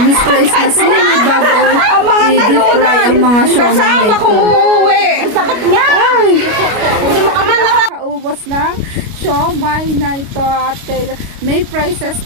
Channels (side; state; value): left; late; 29 ms